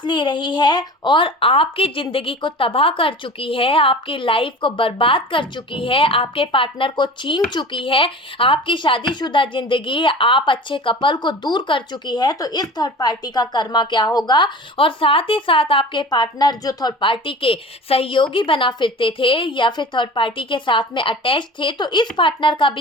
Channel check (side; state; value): both; normal; correlation 0.38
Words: ले रही है और आपकी जिंदगी को तबाह कर चुकी है, आपकी लाइफ को बर्बाद कर चुकी है, आपके पार्टनर को छीन चुकी है, आपकी शादीशुदा जिंदगी, आप अच्छे कपल को दूर कर चुकी है। तो इस थर्ड पार्टी का कर्मा क्या होगा, और साथ ही साथ आपके पार्टनर जो थर्ड पार्टी के सहयोगी बना फिरते थे या फिर थर्ड पार्टी के साथ में अटैच थे, तो इस पार्टनर का